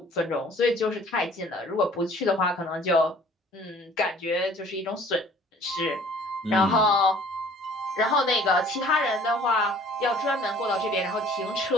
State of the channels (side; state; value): both; normal; correlation 0.53